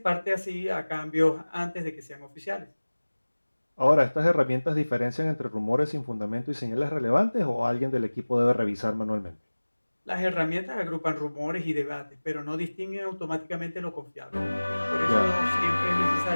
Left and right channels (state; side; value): inverted; both; correlation -1.00